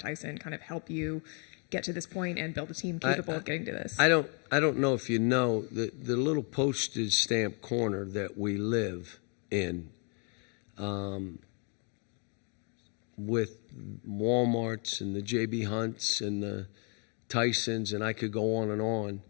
kind of help you get to this point and build a team capable of getting to this? I don't know if you know the little postage stamp corner that we live in, with Walmarts and the J.B. Hunts and the Tysons, and I could go on and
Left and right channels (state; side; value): quieter; right; 38.4 dB